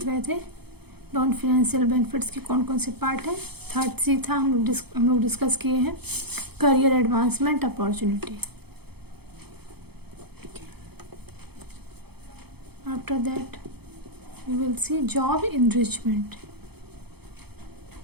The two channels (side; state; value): left; late; 0.97 ms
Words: रहे थे नॉन फाइनेंशियल बेनिफिट्स के कौन कौन से पार्ट है। थर्ड सी था, हम लोग डिस्कस किए हैं career advancement opportunity. After that we will see job enrichment.